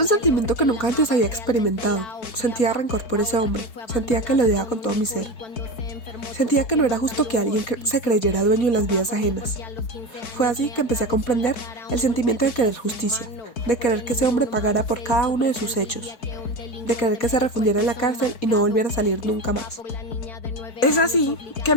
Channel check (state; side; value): late; right; 4.5 ms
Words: sentimiento que nunca antes había experimentado. Sentía rencor por ese hombre. Sentía que lo odiaba con todo mi ser. Sentía que no era justo que alguien se creyera dueño de las vidas ajenas. Fue así que empecé a comprender el sentimiento de querer justicia, de querer que ese hombre pagara por cada uno de sus hechos, de querer que se refundiera en la cárcel y no volviera a salir nunca más. Es así que